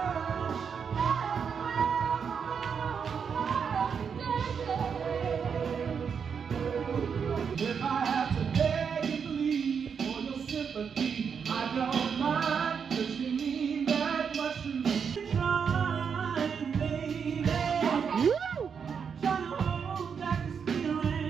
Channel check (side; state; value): left; quieter; 6.6 dB